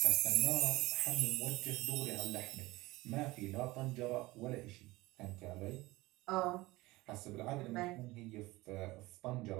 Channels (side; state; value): left; quieter; 20.2 dB